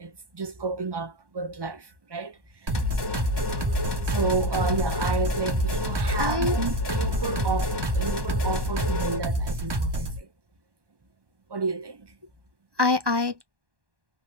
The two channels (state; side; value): late; left; 1.1 ms